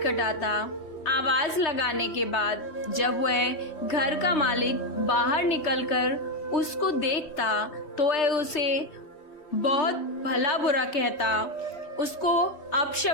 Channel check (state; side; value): late; right; 3.3 ms